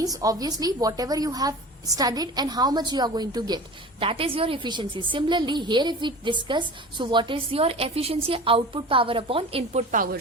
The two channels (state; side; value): normal; both; correlation 0.36